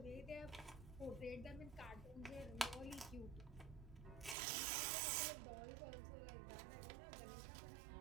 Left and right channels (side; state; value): left; drops out; at 4.4 s